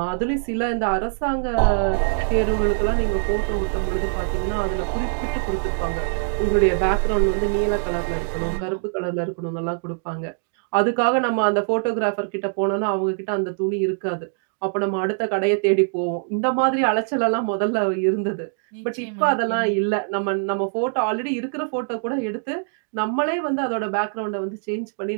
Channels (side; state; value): left; silent; digital silence